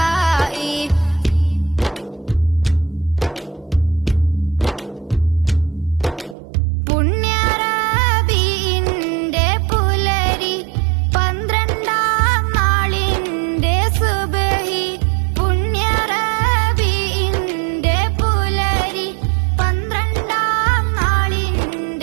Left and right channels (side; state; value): left; drops out; at 6.4 s